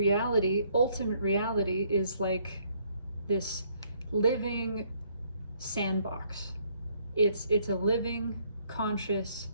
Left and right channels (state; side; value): inverted; both; correlation -0.67